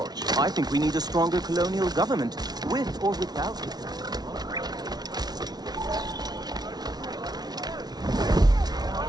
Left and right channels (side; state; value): left; late; 0.19 ms